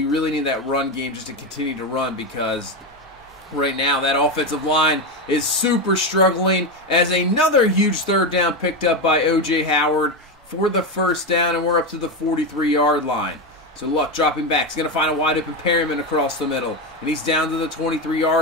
really need that run game just to continue to run, because right now that offensive line is super struggling, as another huge 3rd down picked up by O.J. Howard for the first down, and we're up to the 43-yard line. So Luck dropping back. He's going to find a wide open Perryman across the middle. And he's down to the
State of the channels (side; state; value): both; normal; correlation 0.13